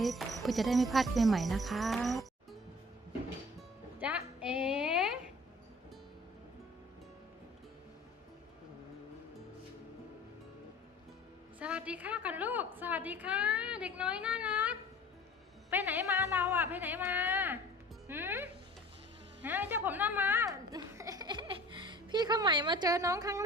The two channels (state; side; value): normal; both; correlation 0.46